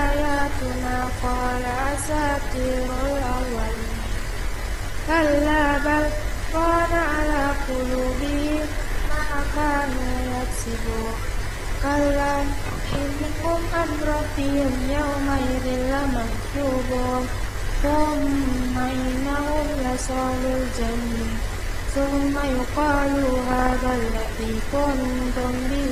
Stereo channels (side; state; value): both; identical; correlation 1.00